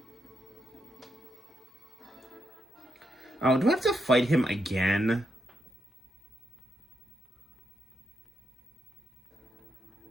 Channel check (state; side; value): normal; both; correlation 0.82